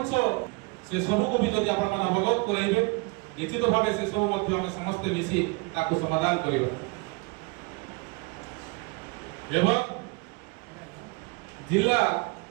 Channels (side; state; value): left; quieter; 27.8 dB